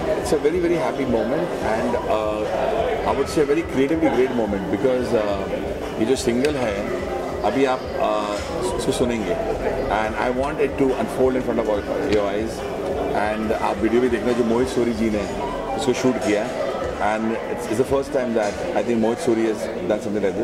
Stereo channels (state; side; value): identical; both; correlation 1.00